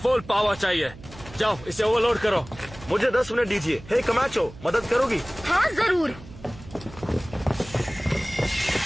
पावर चाहिए। जाओ इसे ओवरलोड करो। मुझे 10 मिनट दीजिए। हे कमाचो, मदद करोगी? हाँ जरूर।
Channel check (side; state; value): right; noise; hum, 18 dB below the sound